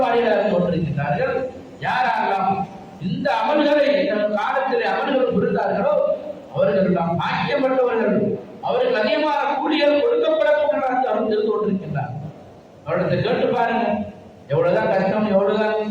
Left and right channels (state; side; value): identical; both; correlation 1.00